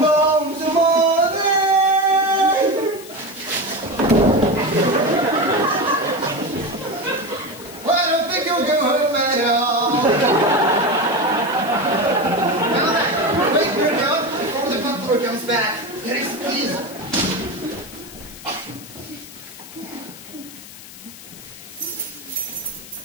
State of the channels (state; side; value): noise; left; hiss, 17 dB below the sound